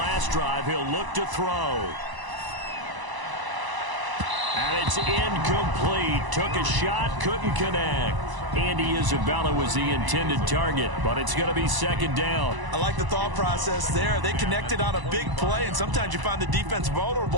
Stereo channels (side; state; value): left; late; 1.0 ms